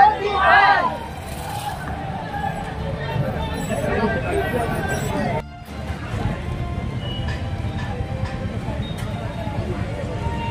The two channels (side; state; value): both; identical; correlation 1.00